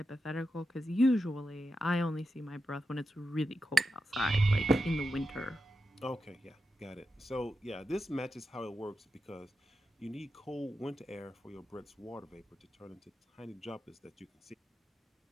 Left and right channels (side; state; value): both; normal; correlation 0.89